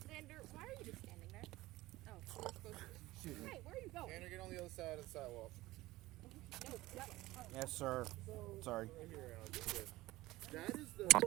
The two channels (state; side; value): quieter; left; 18.2 dB